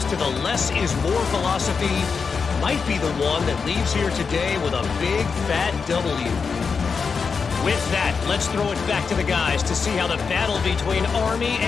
to the less is more philosophy might be the one that leaves here today with a big fat W. With that, let's throw it back to the guys to see how the battle between Army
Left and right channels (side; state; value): right; quieter; 5.4 dB